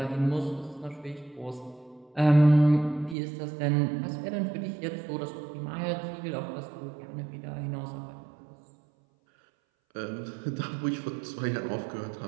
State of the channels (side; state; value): left; drops out; at 3.2 s